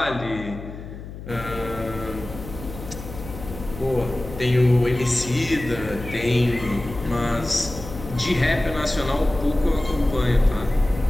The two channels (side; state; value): left; noise; hum, 12 dB below the sound